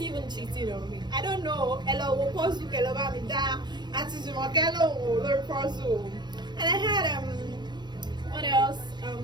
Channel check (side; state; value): left; late; 0.21 ms